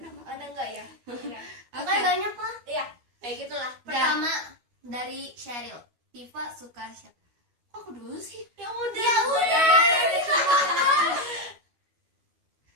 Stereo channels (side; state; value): left; late; 12 ms